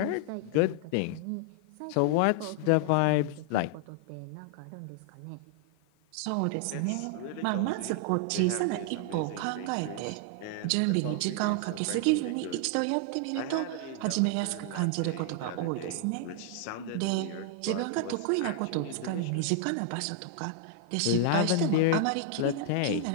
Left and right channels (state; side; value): different; both; correlation 0.00